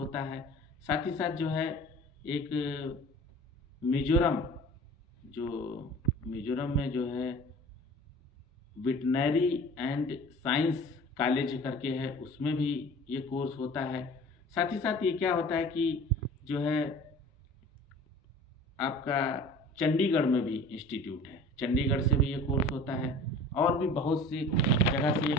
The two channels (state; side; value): normal; both; correlation 0.43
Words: है। साथ ही साथ जो है एक मिजोरम में जो है वेटनरी एंड साइंस कॉलेज करके है, उसमें भी ये कोर्स होता है। साथ ही साथ ये क्या होता है कि जो है आपका चंडीगढ़ में भी इंस्टीट्यूट है, चंडीगढ़ से भी ये कोर्स होता है। और भी बहुत सी जगह से ये